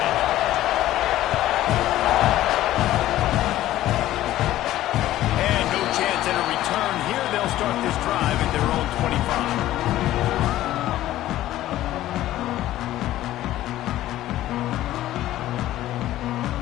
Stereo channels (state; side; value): quieter; right; 14.4 dB